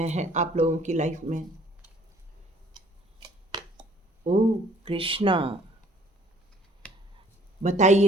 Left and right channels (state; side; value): normal; both; correlation 0.57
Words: हैं आप लोगों की लाइफ में। ओ कृष्णा,